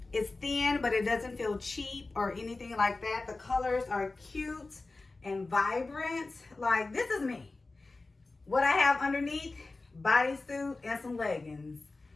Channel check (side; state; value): right; quieter; 3.4 dB